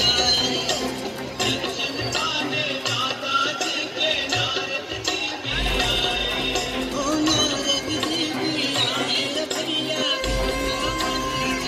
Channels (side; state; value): both; identical; correlation 1.00